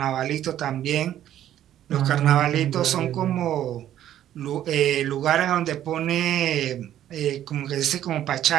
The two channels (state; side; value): quieter; left; 11.7 dB